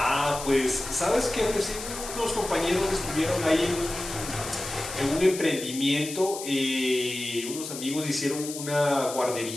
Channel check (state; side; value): noise; left; hiss, 9 dB below the sound